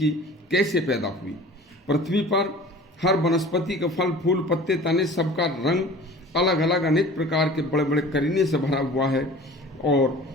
कैसे पैदा हुई। पृथ्वी पर हर वनस्पति के फल, फूल, पत्ते, तने सबका रंग अलग अलग अनेक प्रकार के बड़े बड़े करीने से भरा हुआ है, और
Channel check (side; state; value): both; normal; correlation 0.43